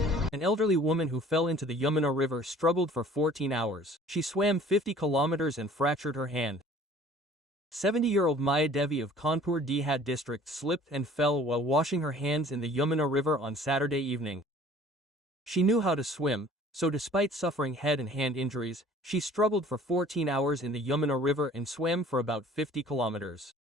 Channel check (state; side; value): normal; both; correlation 0.51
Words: An elderly woman who fell into the Yamuna River struggled for 14 hours. She swam 50 kilometers and fractured her hand. 70-year-old Maya Devi of Kanpur Dihad district slipped and fell while washing her hands in the Yamuna River on Saturday evening. She knew how to swim, so despite suffering head and hand injuries, she struggled for 14 hours in the Yamuna River and swam for about 50 kilometers.